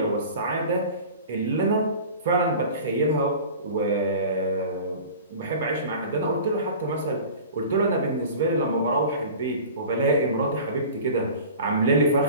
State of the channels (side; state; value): both; inverted; correlation -0.39